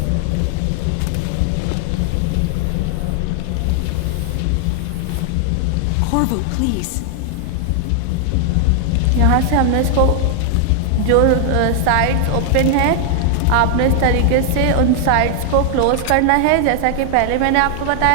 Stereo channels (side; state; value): both; different; correlation 0.00